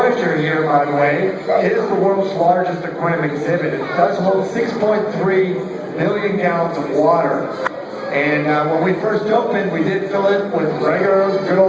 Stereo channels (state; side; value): identical; both; correlation 1.00